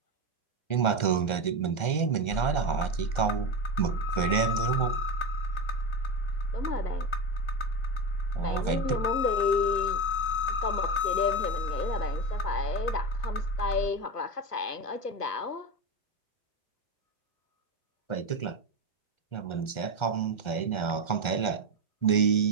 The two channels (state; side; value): late; right; 1.3 ms